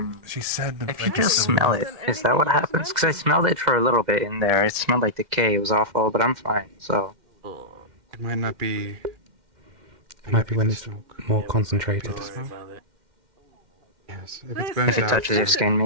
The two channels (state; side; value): late; left; 2.1 ms